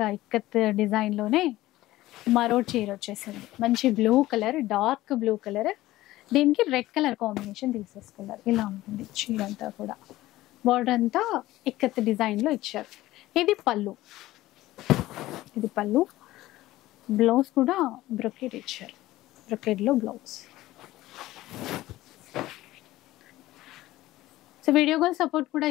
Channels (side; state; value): right; quieter; 16.5 dB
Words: ఇక్కత్ డిజైన్ లోనే మరో చీర వచ్చేసింది. మంచి blue colour, dark blue colour, దీనికి రెడ్ కలర్ కాంబినేషన్ తీసేసుకున్నారు. ఇలా ఉంటుంది చీర అంతా కూడా. బార్డర్ అంతా ఇక్కత్ డిజైన్ లో ఇచ్చారు. ఇది పళ్ళు, ఇది పళ్ళు. బ్లౌజ్ కూడా బ్రొకెట్ ఇచ్చారు, బ్రొకెట్ లో blouse. So video call support కూడా